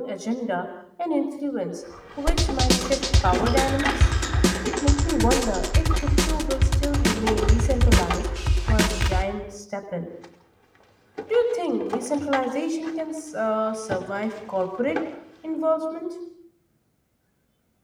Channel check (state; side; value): identical; both; correlation 1.00